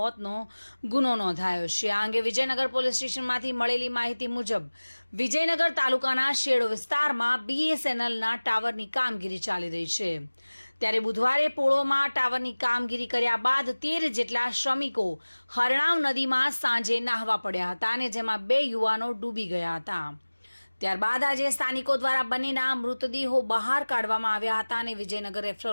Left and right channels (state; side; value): inverted; both; correlation -1.00